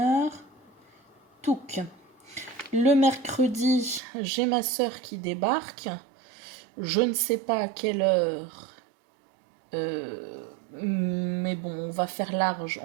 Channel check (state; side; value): drops out; left; at 4.0 s